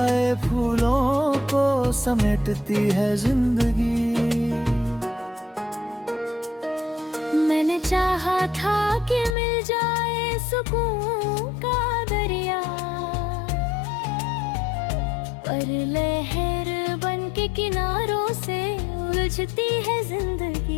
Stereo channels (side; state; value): right; drops out; at 9.3 s